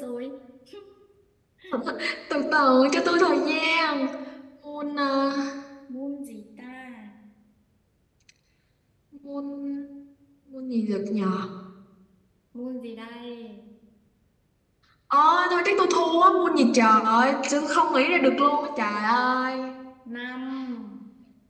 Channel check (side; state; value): both; identical; correlation 1.00